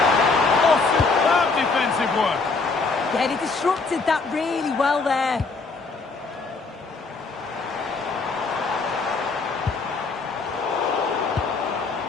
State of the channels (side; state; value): right; quieter; 4.2 dB